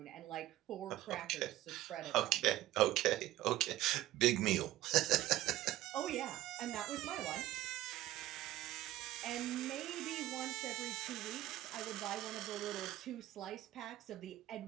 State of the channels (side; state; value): left; quieter; 15.2 dB